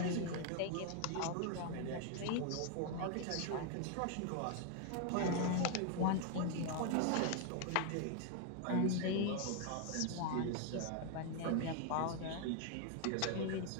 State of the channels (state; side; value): different; both; correlation 0.00